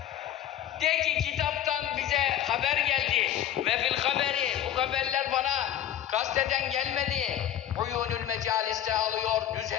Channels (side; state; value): right; quieter; 11.1 dB